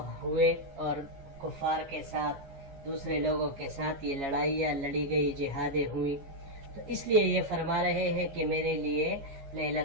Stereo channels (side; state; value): left; late; 15 ms